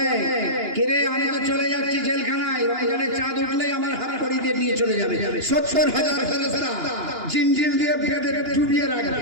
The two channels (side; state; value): left; late; 2.9 ms